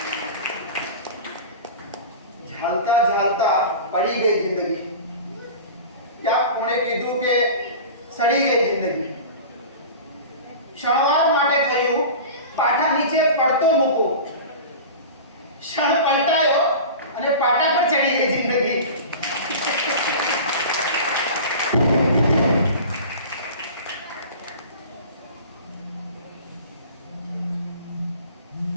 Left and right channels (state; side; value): inverted; both; correlation -0.35